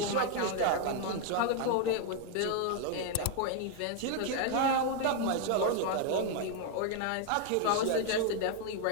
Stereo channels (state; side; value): different; both; correlation 0.01